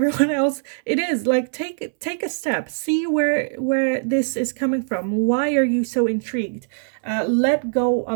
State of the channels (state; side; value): silent; left; digital silence